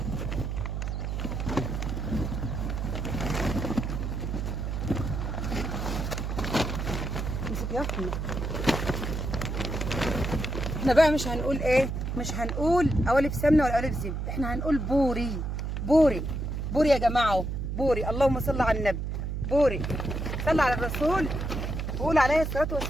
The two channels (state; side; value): noise; right; hum, 3 dB below the sound